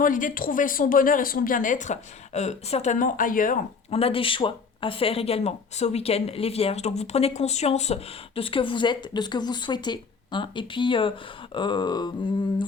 l'idée de trouver son bonheur et son bien-être, certainement ailleurs. On a des choix à faire également ce week-end, les Vierges. Donc vous prenez conscience de ce que vous êtes, de ce que vous souhaitez, hein. Et puis, euh,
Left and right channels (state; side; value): quieter; right; 5.1 dB